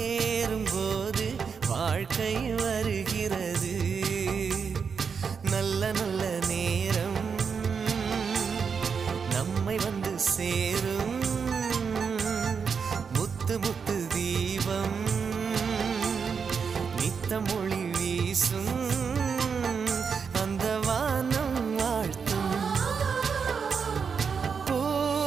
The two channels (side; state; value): left; quieter; 6.1 dB